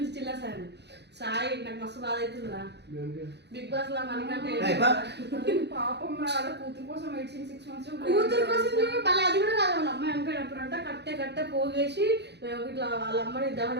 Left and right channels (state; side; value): late; left; 0.49 ms